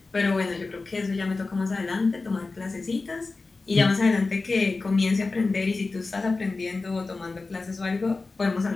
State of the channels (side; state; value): right; quieter; 3.7 dB